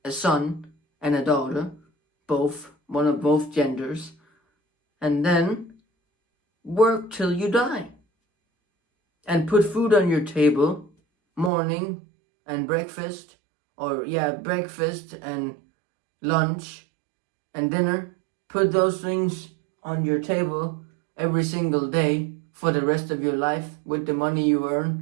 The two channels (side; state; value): left; drops out; at 11.5 s